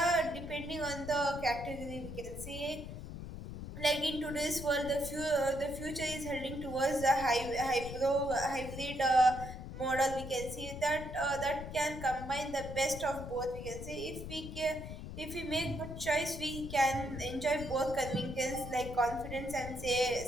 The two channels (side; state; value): left; noise; rumble, 9 dB below the sound